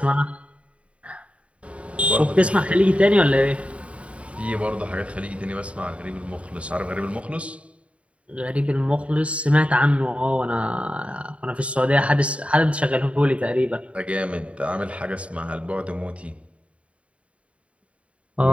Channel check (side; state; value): left; late; 0.063 ms